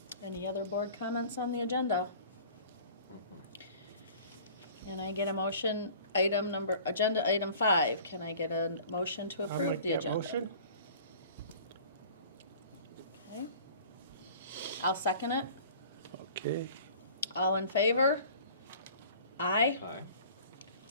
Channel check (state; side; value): inverted; both; correlation -0.46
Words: Any other board comments on the agenda? Can I get a motion, agenda item 5, can I get a motion to approve the agenda? Motion. Okay. I'll second it. Okay. All in favor? Aye. Aye.